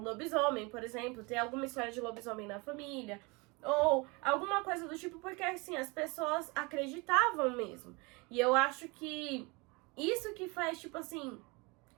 por exemplo, tem alguma história de lobisomem na família, ou alguma coisa do tipo, porque assim, as pessoas acreditavam mesmo. E eu acho que isso que faz, tipo assim,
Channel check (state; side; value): quieter; left; 27.6 dB